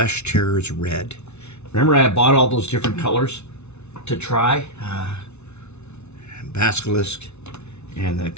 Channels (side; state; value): right; late; 0.81 ms